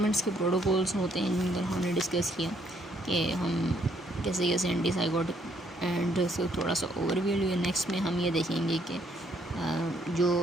के प्रोटोकॉल्स होते हैं जिन पर हमने डिस्कस किया कि हम कैसे कैसे एंटीसाइकोटिक एंड इसको थोड़ा सा ओवरव्यू लिया। नेक्स्ट में हम ये देखेंगे कि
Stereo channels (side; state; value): both; normal; correlation 0.69